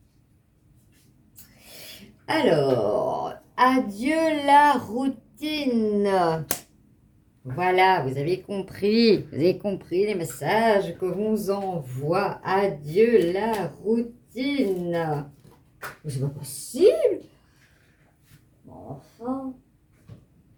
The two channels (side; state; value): both; identical; correlation 1.00